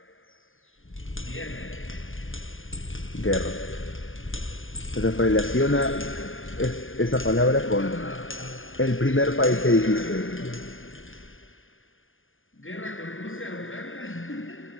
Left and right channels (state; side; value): late; right; 0.58 ms